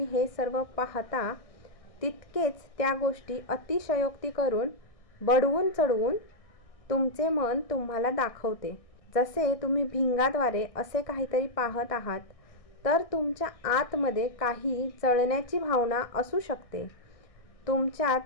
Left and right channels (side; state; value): right; late; 1.6 ms